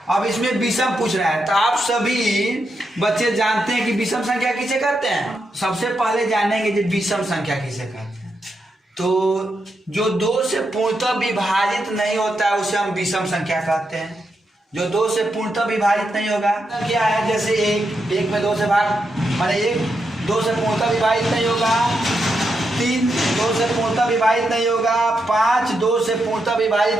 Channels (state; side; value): normal; both; correlation 0.84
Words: अब इसमें विषम पूछ रहा है, तो आप सभी बच्चे जानते हैं कि विषम संख्या किसे कहते हैं। सबसे पहले जानेंगे कि विषम संख्या किसे कहते हैं। तो जो 2 से पूर्णतः विभाजित नहीं होता है उसे हम विषम संख्या कहते हैं। जो 2 से पूर्णतः विभाजित नहीं होगा क्या है, जैसे 1 में 2 से भाग, माने 1 2 से पूर्णतः विभाजित नहीं होगा, 3 2 से पूर्णतः विभाजित नहीं होगा, 5 2 से पूर्णतः